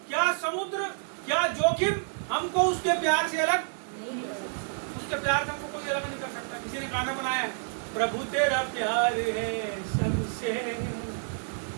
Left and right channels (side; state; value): left; silent; 59 dB below the other